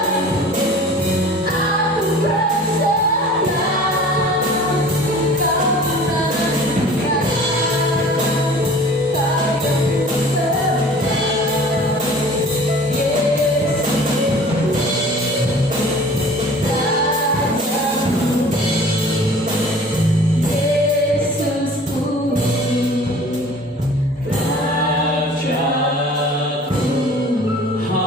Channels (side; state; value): both; normal; correlation 0.46